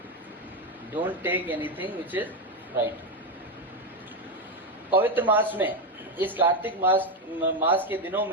Don't take anything which is fried. पवित्र मास में, इस कार्तिक मास के दिनों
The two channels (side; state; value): both; normal; correlation 0.09